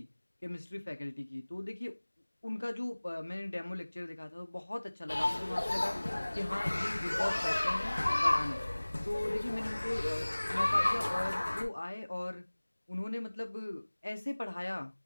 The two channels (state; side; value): inverted; both; correlation -1.00